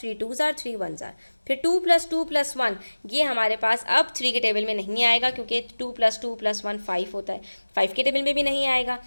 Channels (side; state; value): both; inverted; correlation -1.00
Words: 2 जार 3 1 जार। फिर 2 + 2 + 1, ये हमारे पास अब 3 के टेबल में नहीं आएगा, क्योंकि 2 + 2 + 1 5 होता है, 5 के टेबल में भी नहीं आएगा।